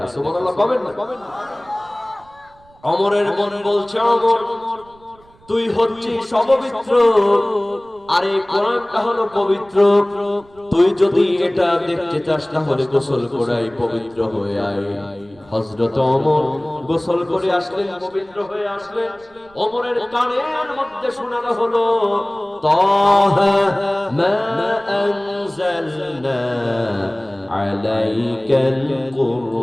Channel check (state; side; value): noise; right; rumble, 28 dB below the sound